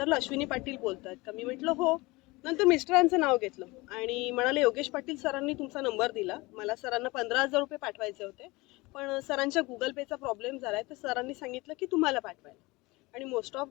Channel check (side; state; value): right; quieter; 22.9 dB